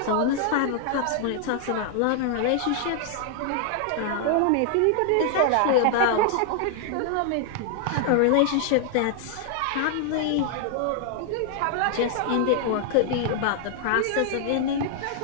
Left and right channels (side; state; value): both; different; correlation 0.00